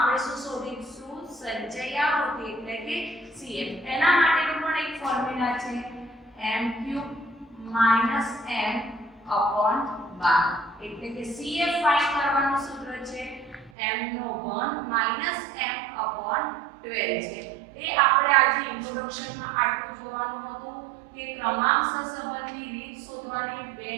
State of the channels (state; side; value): drops out; left; at 13.7 s